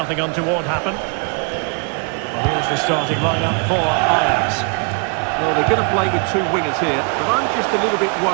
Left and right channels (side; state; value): left; quieter; 38.2 dB